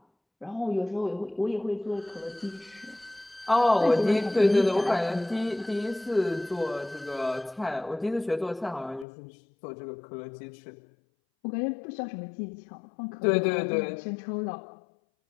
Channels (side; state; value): right; drops out; at 9.1 s